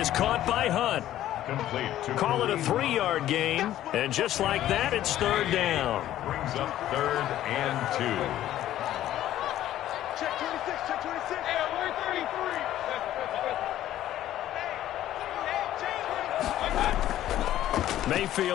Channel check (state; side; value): quieter; right; 12.9 dB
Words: caught by Hunt. Call it a 3-yard gain. And just like that, it's 3rd down. Brings up 3rd and 2. Check 26, check 26. Hey, we're 33.